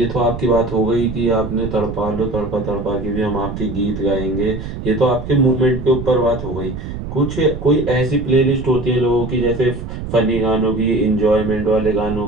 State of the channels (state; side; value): noise; right; rumble, 8 dB below the sound